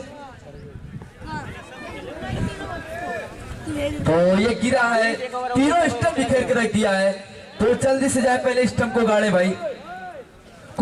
तो ये गिरा है, तीनों स्टंप बिखेर के रख दिया है। तो जल्दी से जाए, पहले स्टंप को गाड़े भाई,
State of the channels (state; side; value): identical; both; correlation 1.00